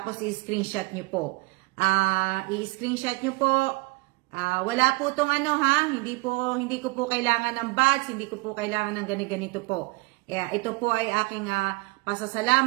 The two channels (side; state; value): left; quieter; 25.4 dB